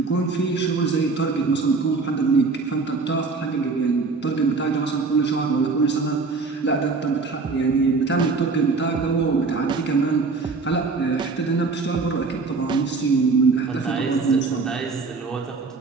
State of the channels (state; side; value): quieter; left; 4.2 dB